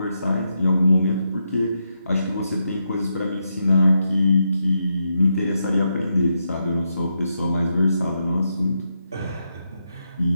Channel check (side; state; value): both; inverted; correlation -0.83